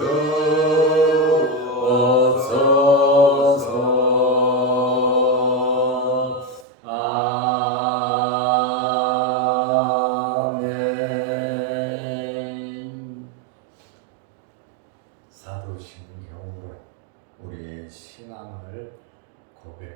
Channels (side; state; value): left; drops out; at 6.7 s